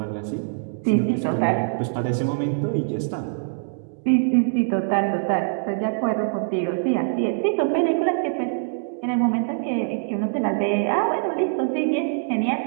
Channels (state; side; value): silent; left; digital silence